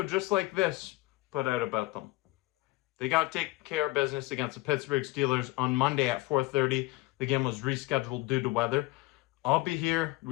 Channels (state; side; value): quieter; right; 21.0 dB